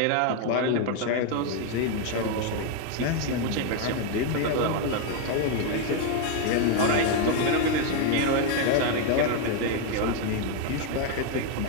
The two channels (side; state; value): both; different; correlation 0.01